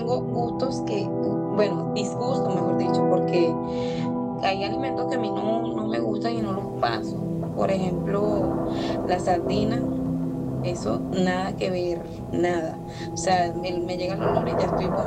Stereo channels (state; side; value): identical; both; correlation 1.00